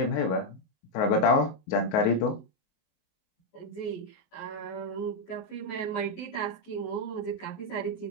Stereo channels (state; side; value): late; right; 19 ms